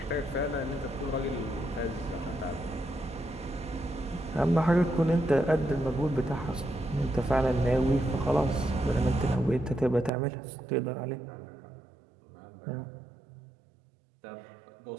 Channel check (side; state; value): left; drops out; at 10.1 s